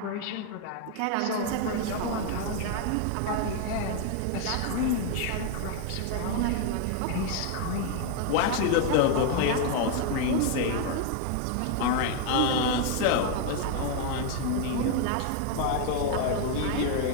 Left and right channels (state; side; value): different; both; correlation 0.01